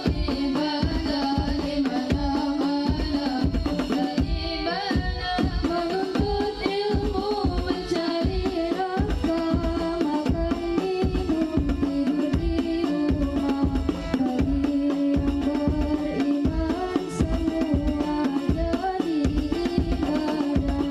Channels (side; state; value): both; identical; correlation 1.00